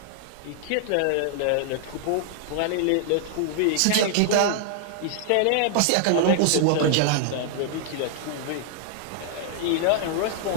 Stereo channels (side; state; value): both; different; correlation 0.00